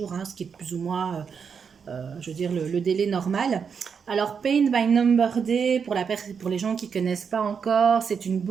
ce qui est plus ou moins, je veux dire, le délai normal. Alors, Paint by Number Day, pour les gens qui ne connaissent pas encore, c'est une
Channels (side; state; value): left; quieter; 6.4 dB